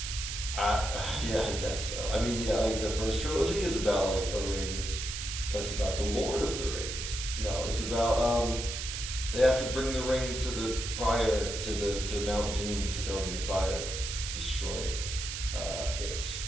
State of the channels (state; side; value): noise; right; hiss, 5 dB below the sound